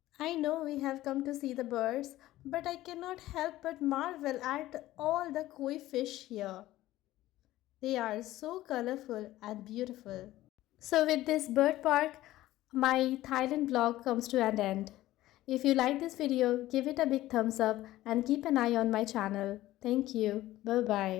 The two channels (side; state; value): right; quieter; 15.7 dB